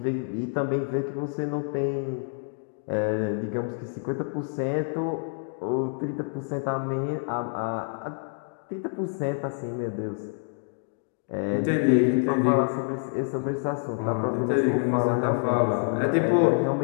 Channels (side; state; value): right; silent; 60 dB below the other